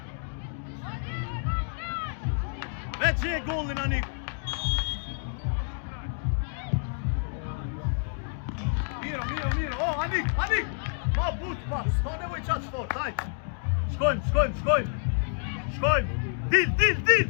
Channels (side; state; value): right; silent; digital silence